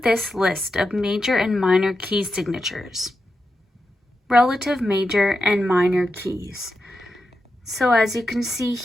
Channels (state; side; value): normal; both; correlation 0.88